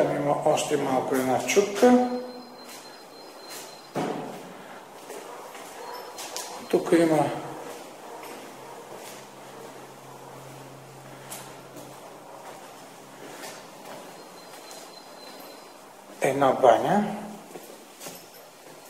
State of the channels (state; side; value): identical; both; correlation 1.00